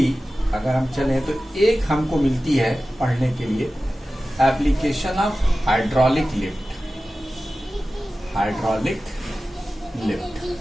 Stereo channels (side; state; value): both; normal; correlation 0.95